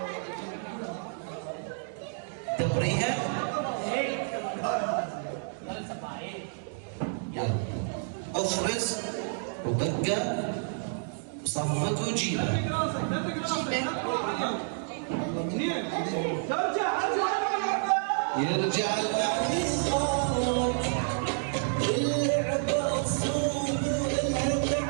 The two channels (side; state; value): left; silent; digital silence